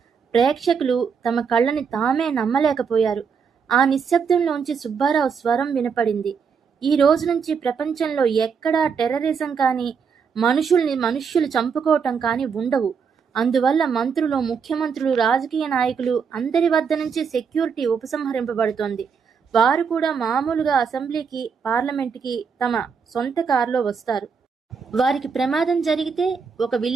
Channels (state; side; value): quieter; left; 6.1 dB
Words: ప్రేక్షకులు తమ కళ్ళని తామే నమ్మలేకపోయారు. ఆ నిశ్శబ్దంలోంచి సుబ్బారావు స్వరం వినపడింది, ఈ రోజు నుంచి ప్రపంచంలో ఎక్కడా టెర్రరిజం కానీ, మనుష్యులు చంపుకోవటం కానీ ఉండవు. అందువల్ల మంత్రులు, ముఖ్యమంత్రులు, రాజకీయ నాయకులు అందరి వద్ద నుంచి సెక్యూరిటీ ఉపసంహరింపబడుతోంది. వారు కూడా మామూలుగా అసెంబ్లీకి, పార్లమెంటుకి తమ సొంత కారులో వస్తారు. వారికి ప్రమాదం జరిగితే? ఒక